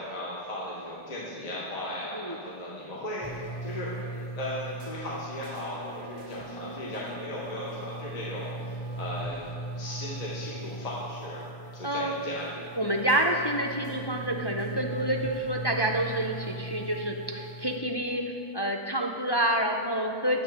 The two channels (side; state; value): right; late; 1.1 ms